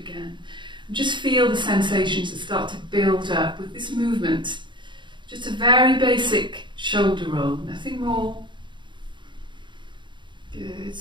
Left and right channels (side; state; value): left; late; 0.23 ms